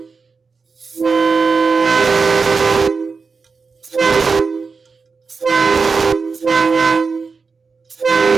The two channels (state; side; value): quieter; left; 4.8 dB